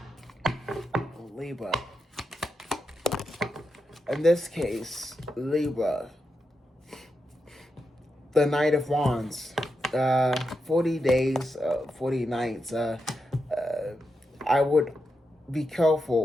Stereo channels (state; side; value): normal; both; correlation 0.87